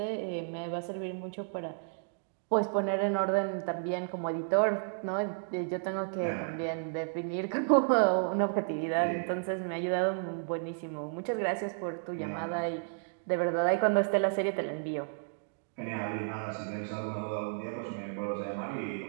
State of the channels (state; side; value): silent; left; digital silence